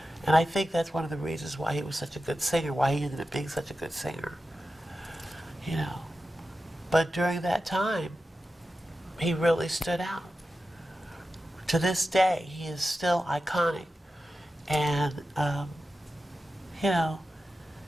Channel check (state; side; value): normal; both; correlation 0.92